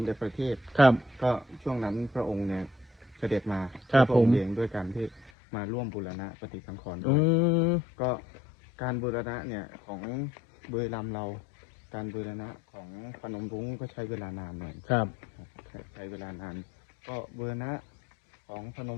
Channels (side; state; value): right; drops out; at 5.3 s